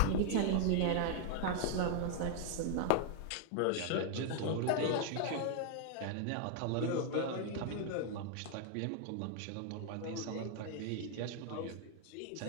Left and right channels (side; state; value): both; different; correlation 0.00